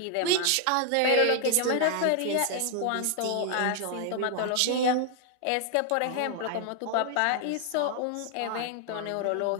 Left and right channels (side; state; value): both; different; correlation 0.00